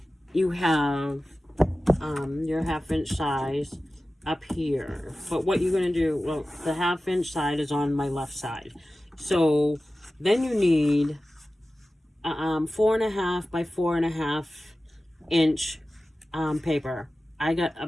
you have your 1/2 inch size up here. But what you're going to do, well, the 1/2 inch side is on my left side. So then you need 4.5 by 4.5 inch paper. I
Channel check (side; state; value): both; normal; correlation 0.96